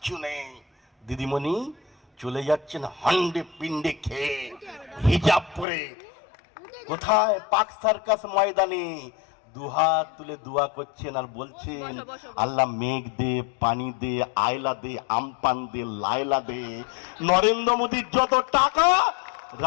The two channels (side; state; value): right; drops out; at 5.7 s